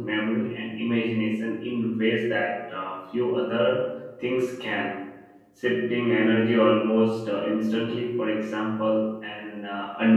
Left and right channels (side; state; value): both; identical; correlation 1.00